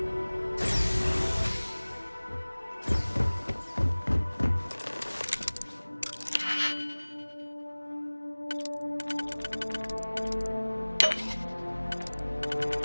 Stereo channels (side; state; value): both; inverted; correlation -1.00